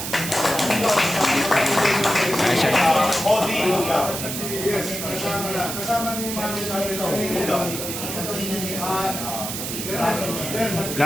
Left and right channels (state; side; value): noise; right; hiss, 5 dB below the sound